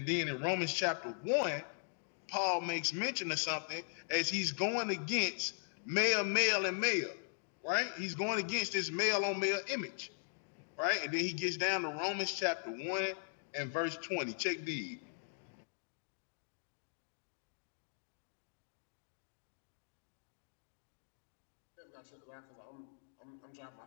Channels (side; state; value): right; silent; digital silence